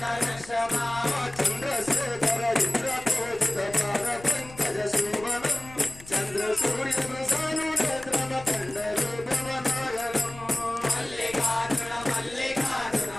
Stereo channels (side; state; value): left; noise; rumble, 18 dB below the sound